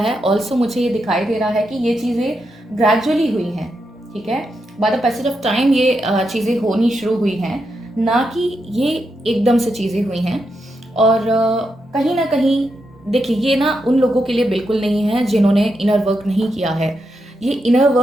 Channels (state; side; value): normal; both; correlation 0.84